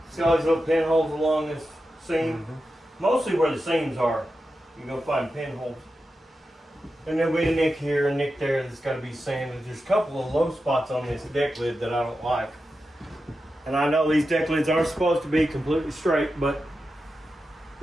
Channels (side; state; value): both; normal; correlation 0.90